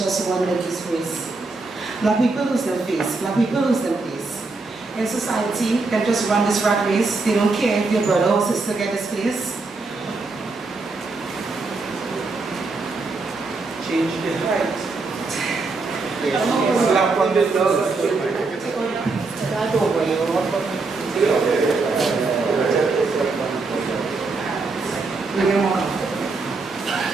just one lady's face. Black people lose their face. Black people lose their face. In society, they just run this rat race. They don't care if your brother or sister get this place. Change the height. Slap on the nose.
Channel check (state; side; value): quieter; left; 3.8 dB